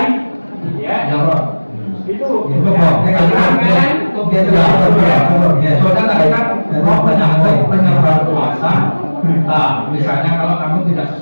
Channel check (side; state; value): both; inverted; correlation -1.00